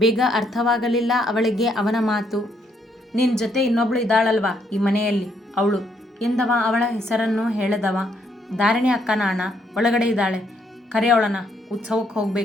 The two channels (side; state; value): both; normal; correlation 0.73